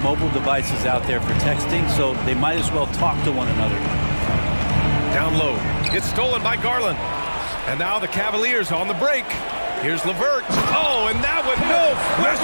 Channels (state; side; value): inverted; both; correlation -1.00